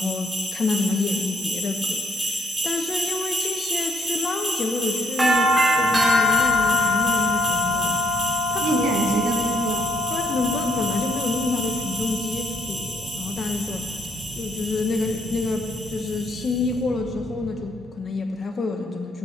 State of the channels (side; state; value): both; normal; correlation 0.72